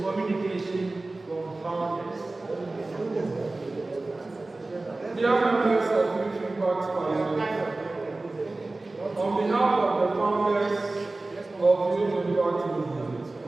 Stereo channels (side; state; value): left; quieter; 3.1 dB